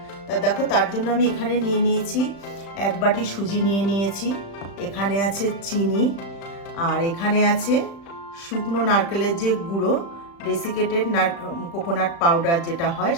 তা দেখো, তার জন্য আমি এখানে নিয়ে নিয়েছি 1 বাটি সুজি নিয়ে নিয়েছি, এখানে আছে চিনি, আর এখানে আছে শুকনো নারকেলের যে গুঁড়ো, ডেসিকেটেড কোকোনাট পাউডার যেটা হয়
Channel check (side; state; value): right; late; 35 ms